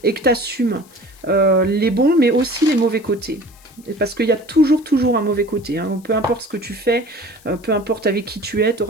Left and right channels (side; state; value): left; noise; hiss, 27 dB below the sound